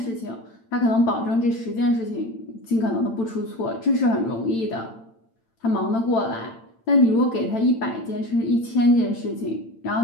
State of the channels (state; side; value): late; right; 8.9 ms